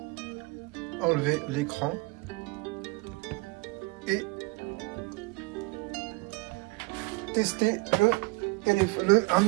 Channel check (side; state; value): left; quieter; 26.9 dB